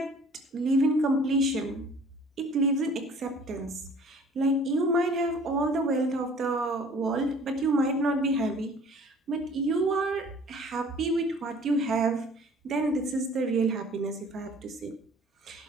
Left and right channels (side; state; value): both; normal; correlation 0.51